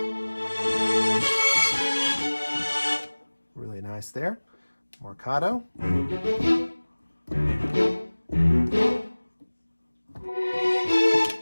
Really nice there. Marcato.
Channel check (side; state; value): both; inverted; correlation -1.00